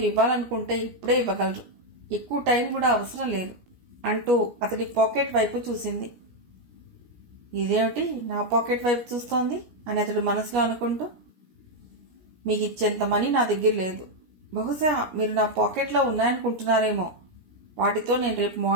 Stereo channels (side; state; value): left; late; 17 ms